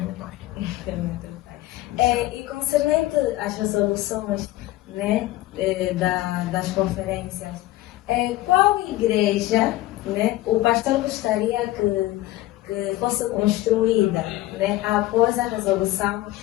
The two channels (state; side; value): quieter; right; 16.3 dB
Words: pai. E concernente às resoluções, né, das conferências, qual igreja, né, o pastor gostaria que fosse construída, né, após a resolução